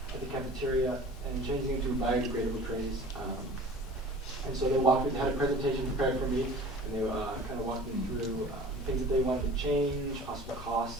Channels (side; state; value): both; normal; correlation 0.43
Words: at the cafeteria, and changing them to biodegradable trays. And so they had a presentation prepared for me, and they kind of walked me through things that they wanted to change, possible